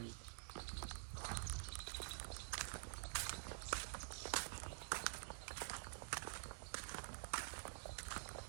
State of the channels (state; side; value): silent; left; digital silence